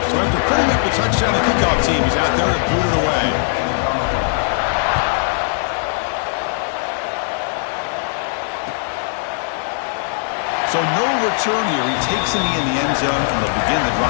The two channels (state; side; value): silent; right; digital silence